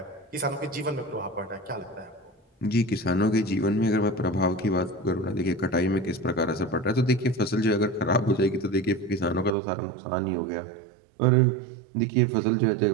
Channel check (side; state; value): left; drops out; at 9.6 s